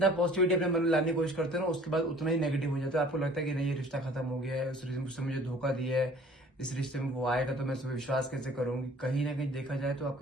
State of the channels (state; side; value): normal; both; correlation 0.51